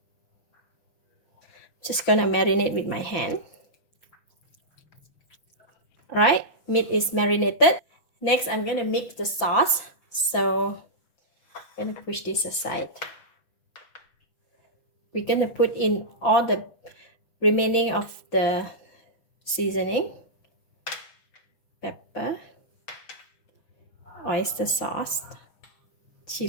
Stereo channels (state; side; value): late; right; 5.9 ms